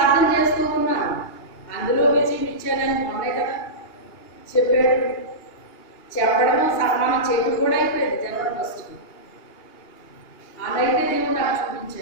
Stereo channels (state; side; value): late; right; 2.8 ms